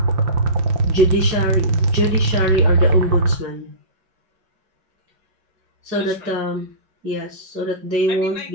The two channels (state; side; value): late; left; 5.7 ms